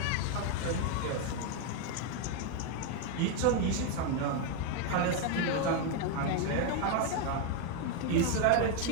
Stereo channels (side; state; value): both; different; correlation 0.01